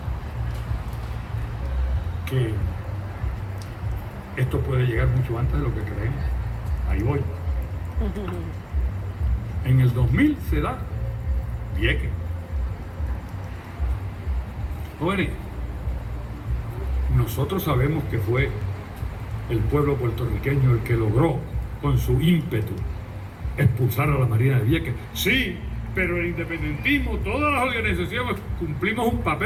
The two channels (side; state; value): both; identical; correlation 1.00